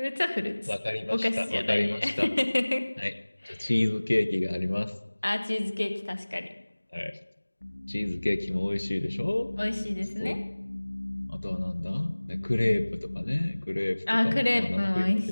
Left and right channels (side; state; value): both; inverted; correlation -1.00